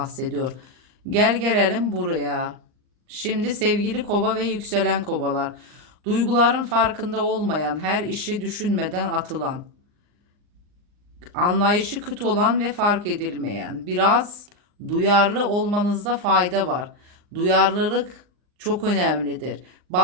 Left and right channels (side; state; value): left; late; 39 ms